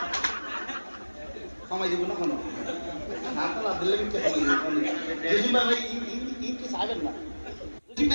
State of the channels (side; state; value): both; inverted; correlation -1.00